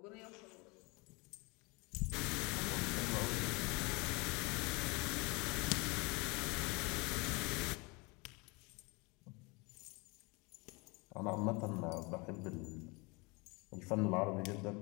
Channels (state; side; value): quieter; right; 27.7 dB